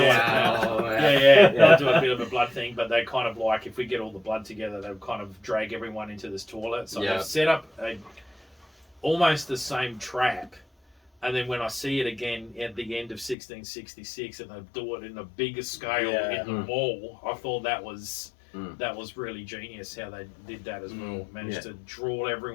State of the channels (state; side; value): drops out; right; at 13.4 s